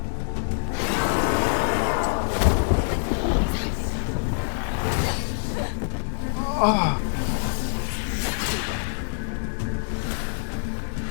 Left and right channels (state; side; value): silent; right; digital silence